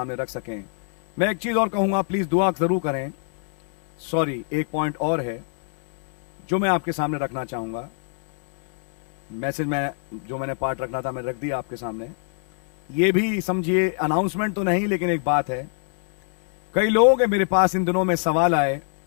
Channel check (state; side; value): silent; right; 63 dB below the other